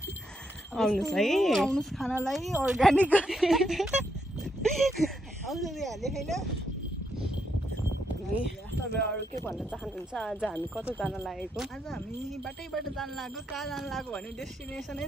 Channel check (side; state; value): both; normal; correlation 0.78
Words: आउनुहोस् है आउनुहोस् खानालाई अर्ग्यानिक आउँछ हाले होइन तपाईँ अरू के भन्न चाहनुहुन्छ आज हामी कता जान लागेको आज हामी बाटैबाट जान लाग्यो कहाँ जान लाग्यो भने डेस्टिनेसनै